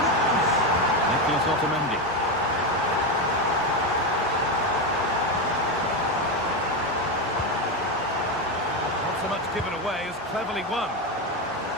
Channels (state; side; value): normal; both; correlation 0.12